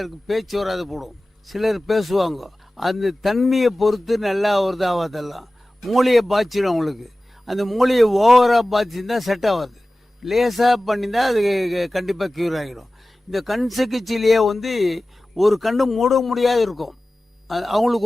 பேச்சு வராது போடும், சிலர் பேசுவாங்க. அந்த தன்மையை பொறுத்து நல்லா வருது ஆகாதெல்லாம். மூளையை பாய்ச்சிடும் அவங்களுக்கு. அந்த மூளையை ஓவராக பாய்ச்சிருந்தா செட் ஆகாது. லேசாக பண்ணியிருந்தா அது கண்டிப்பாக க்யூர் ஆகிடும். இந்த கண் சிகிச்சையிலேயே வந்து ஒரு கண்ணு மூட முடியாது இருக்கும். அவங்களுக்கு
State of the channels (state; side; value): normal; both; correlation 0.96